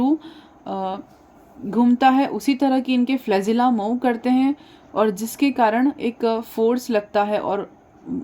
घूमता है उसी तरह की इनके फ्लैजिला मूव करते हैं और जिसके कारण एक फोर्स लगता है और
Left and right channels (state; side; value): identical; both; correlation 1.00